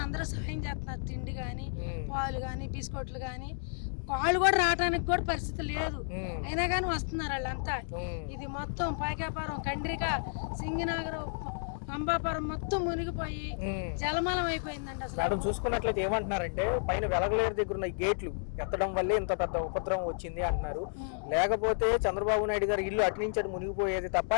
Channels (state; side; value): silent; right; digital silence